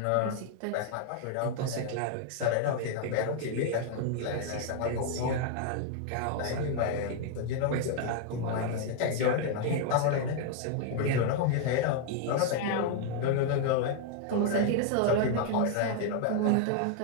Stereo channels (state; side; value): different; both; correlation 0.00